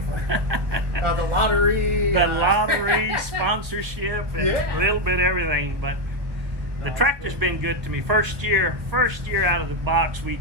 for? The lottery. The lottery, sponsorship, and a little bit of everything. But the tractor's been good to me. First year out of the box, we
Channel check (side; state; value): left; late; 1.5 ms